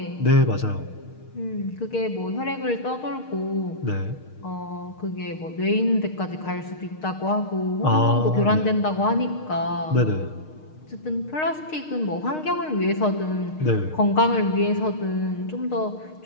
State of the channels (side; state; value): right; late; 6.5 ms